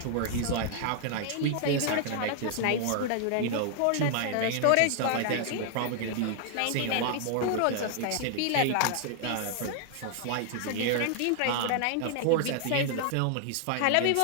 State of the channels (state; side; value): different; both; correlation 0.00